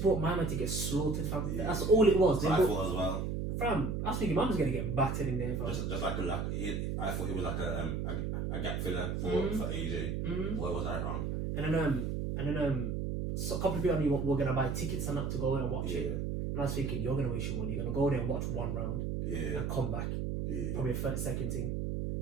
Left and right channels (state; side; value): noise; right; hum, 1 dB below the sound